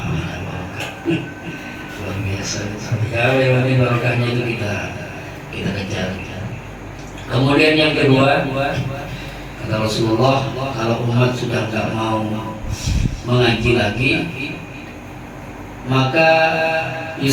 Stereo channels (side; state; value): both; identical; correlation 1.00